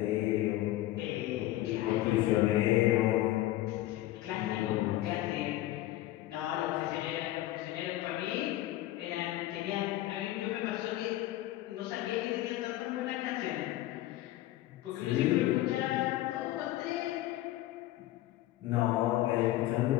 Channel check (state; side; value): quieter; right; 15.5 dB